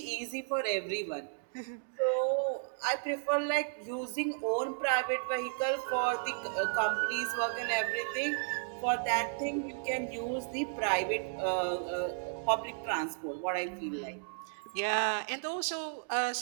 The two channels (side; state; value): left; silent; digital silence